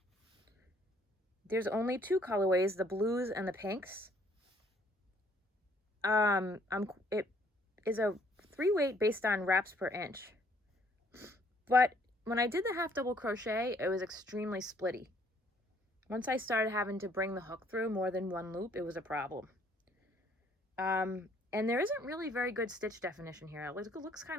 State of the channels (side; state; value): both; normal; correlation 0.63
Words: There's only 2 colorways, the blues and the pinks. It is a 3 weight based on wraps per inch. But when I did the half double crochet, it was extremely splitty. Once I started having to bring the hook through more than one loop, it was a problem. And there isn't really very good stitch definition here. It looks